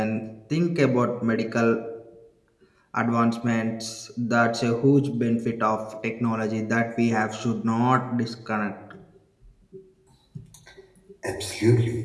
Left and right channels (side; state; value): both; identical; correlation 1.00